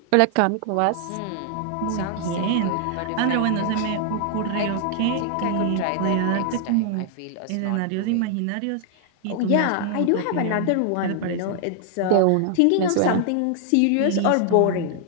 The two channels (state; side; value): different; both; correlation 0.00